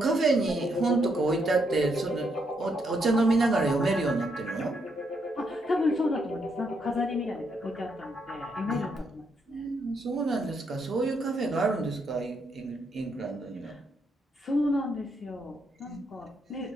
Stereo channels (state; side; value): normal; both; correlation 0.76